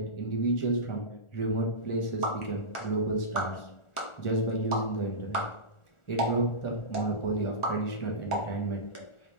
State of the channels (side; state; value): right; late; 1.4 ms